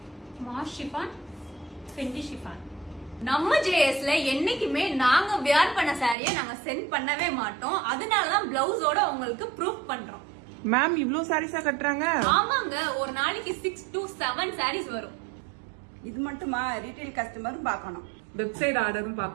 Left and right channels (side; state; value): left; drops out; at 6.2 s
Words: माश शिफान फेंडी शिफान. நம்ம ஜேஎஸ்ல என்னைக்குமே நாங்க வியர் பண்ண சாரியை நாங்க சென்ட் பண்ணவே மாட்டோம். அதனாலதான் பிளவுஸோட உங்களுக்கு ப்ரூஃப் பண்றோம். மேம் இவ்ளோ சாரீஸா கட்டுறாங்க? ஆமாங்க, ஒரு நாளைக்கு 6 to 7 சாரீஸ் வரும். இது மட்டுமா, ரீட்டைல் கஸ்டமரும் பார்க்கணும், வெப்சைட் ஆர்டரும்